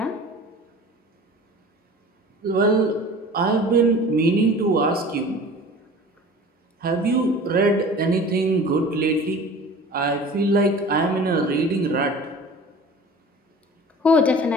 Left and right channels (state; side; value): normal; both; correlation 0.42